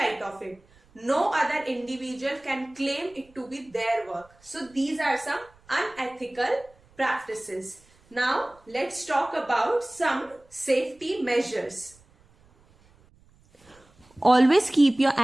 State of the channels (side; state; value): right; noise; rumble, 30 dB below the sound